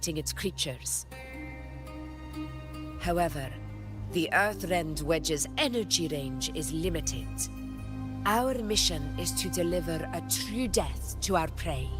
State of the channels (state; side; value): identical; both; correlation 1.00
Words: its creatures. However, the Earthrend Wedge's energy range is limited. Our mission is to deliver a true death to our prey.